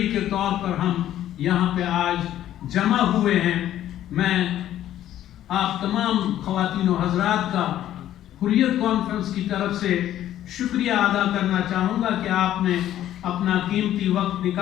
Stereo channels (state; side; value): quieter; right; 12.2 dB